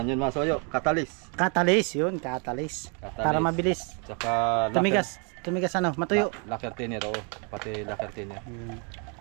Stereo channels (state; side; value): quieter; left; 36.8 dB